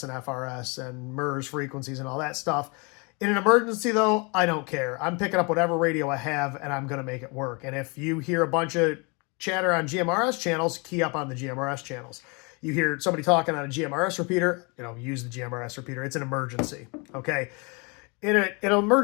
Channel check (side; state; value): right; quieter; 31.0 dB